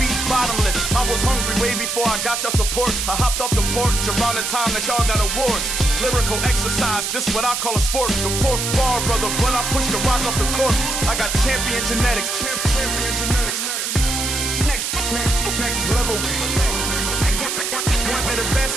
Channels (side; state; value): right; noise; hiss, 2 dB below the sound